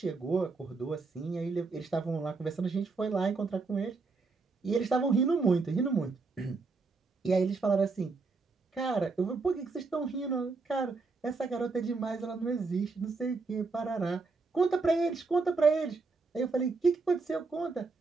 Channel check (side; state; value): left; quieter; 4.1 dB